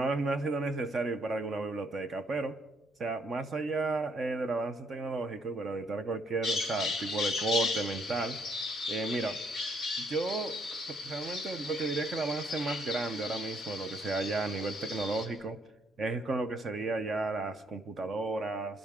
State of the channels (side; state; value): both; normal; correlation 0.69